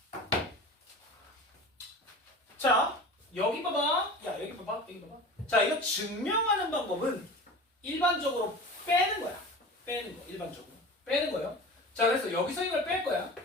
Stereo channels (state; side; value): normal; both; correlation 0.35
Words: 자, 여기 봐봐. 야, 여기 봐봐. 여기 봐봐. 자, 이거 증명하는 방법은 일반적으로 빼는 거야. 빼는 거. 일반적으로. 빼는 거예요. 자, 그래서 여기서 이걸 뺄 거야.